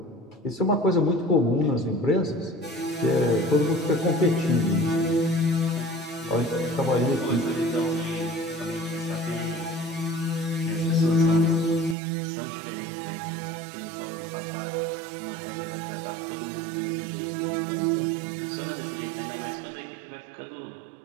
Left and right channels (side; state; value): left; drops out; at 12.0 s